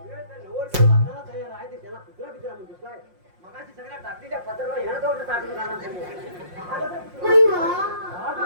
ते नवरदेव लग्नाला तयार आहे ते त्याला कुत्रा बित्रा म्हणतोस काय मगाशी सगळ्या टाकलीच्या पत्राला ह्यानं जवळ टाकून जाणार तुम्ही. हा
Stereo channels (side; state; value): left; late; 5.6 ms